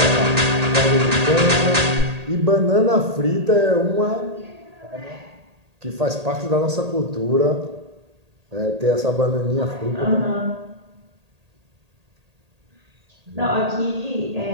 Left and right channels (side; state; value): left; late; 1.8 ms